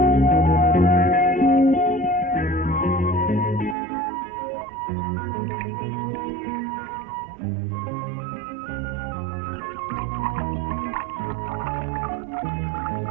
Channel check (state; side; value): drops out; left; at 3.8 s